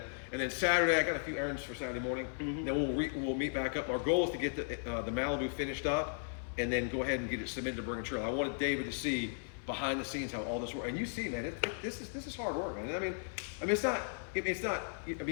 then Saturday I got a few errands for Saturday morning. Mm-hmm. Then we'll meet back up. Our goal is to get the Malibu finished up, and then go ahead and get it submitted to Bring a Trailer. I wanted David to see behind the scenes how all this works, and you see, man, this is hard work, man. I mean, it's not.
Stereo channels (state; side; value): silent; right; 54 dB below the other